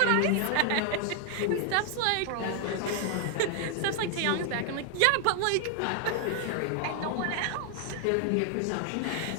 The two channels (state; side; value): different; both; correlation 0.00